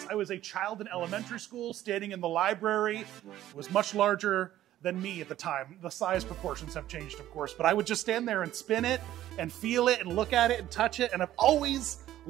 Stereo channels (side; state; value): left; quieter; 13.3 dB